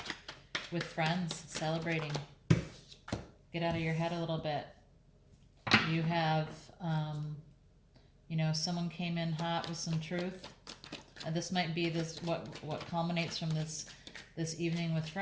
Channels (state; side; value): identical; both; correlation 1.00